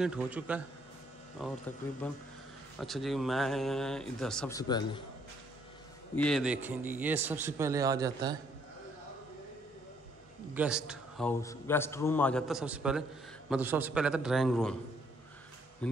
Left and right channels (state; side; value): normal; both; correlation 0.67